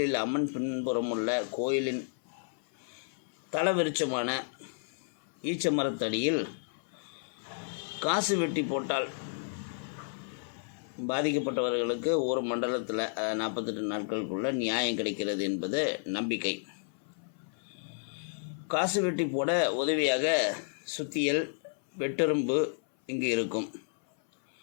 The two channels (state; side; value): silent; right; 57 dB below the other